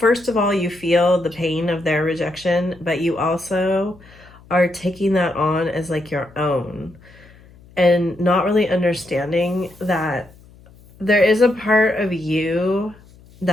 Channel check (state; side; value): noise; left; hum, 25 dB below the sound